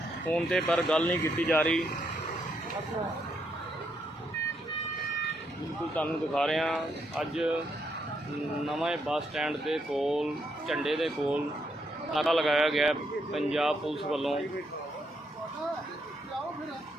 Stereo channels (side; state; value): both; normal; correlation 0.77